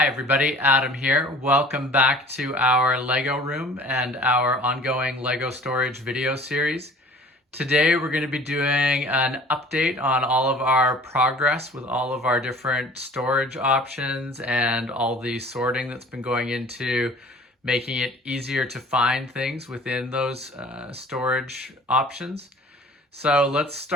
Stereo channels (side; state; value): both; normal; correlation 0.48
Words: everybody, Adam here. Welcome back to our Lego room and our ongoing Lego storage video series. Today we're going to be doing an update on all of our progress with all of our different storage options and all the sorting that's been going into making it easier to find things within those storage options. So let's